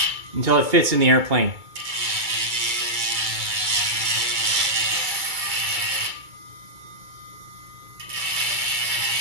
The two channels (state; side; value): late; left; 2.3 ms